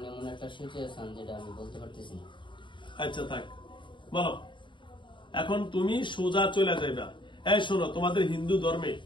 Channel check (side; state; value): right; late; 0.23 ms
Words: এমন একটা সিচুয়েশন যেটা আমি বলতে পারতেছি না। আচ্ছা থাক, বলো এখন তুমি সোজা চলে যাইবা। এই শোনো, তোমাদের হিন্দু